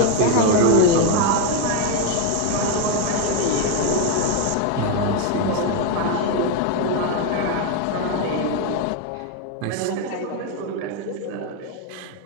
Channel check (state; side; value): different; both; correlation 0.01